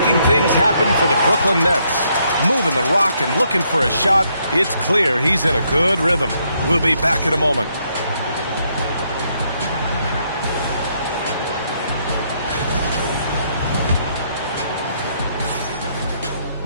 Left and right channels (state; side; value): inverted; both; correlation -0.73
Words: things happen for the Brooklyn Nets. Moving the rock and looking for a shot. It's clear he's in a good rhythm. We'll be back in a moment.